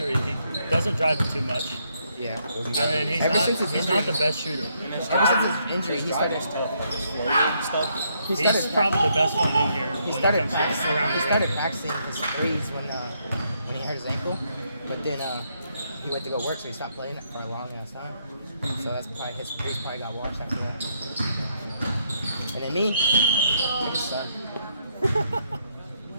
he doesn't drive it too much, Yeah. and then he's Ever since his he's injury- not the best shooter. Ever since his injury, he started. He He's started. probably the best one in here He when started it comes to practicing. around He the started rim. practicing his threes when he hurt his ankle, but then he went to go work, so he stopped playing it for a long ass time. So that's probably his threes probably got washed after that. And then me, I just suck.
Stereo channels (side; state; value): both; inverted; correlation -0.75